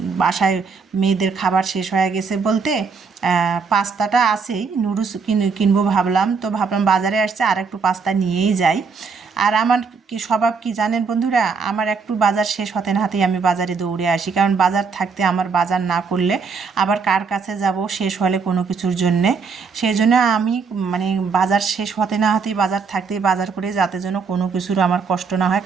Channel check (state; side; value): quieter; left; 5.2 dB